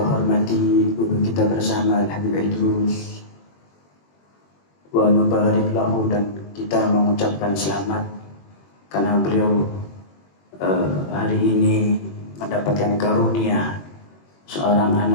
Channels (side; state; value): right; late; 21 ms